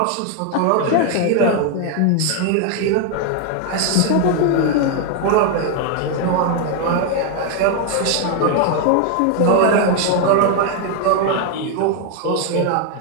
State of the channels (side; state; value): both; different; correlation 0.01